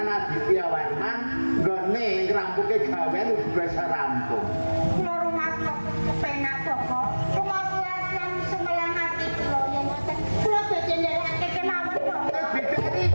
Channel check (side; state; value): both; inverted; correlation -1.00